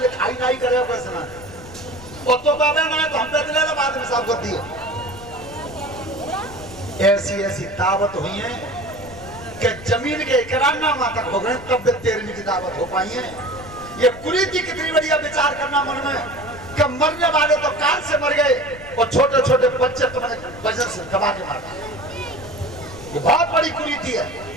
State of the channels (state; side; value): noise; left; rumble, 17 dB below the sound